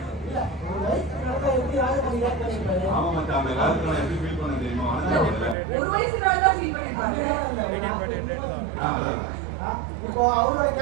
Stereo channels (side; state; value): left; drops out; at 5.6 s